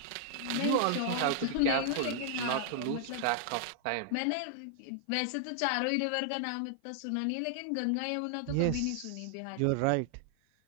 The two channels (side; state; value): both; different; correlation 0.00